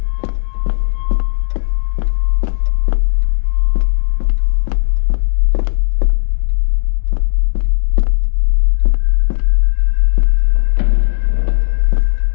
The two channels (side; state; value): right; silent; digital silence